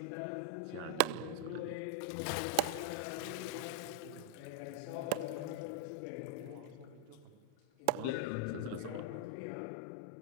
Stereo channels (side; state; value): both; different; correlation 0.00